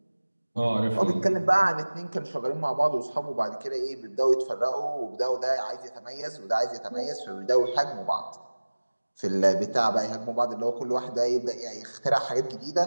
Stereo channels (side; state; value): both; inverted; correlation -1.00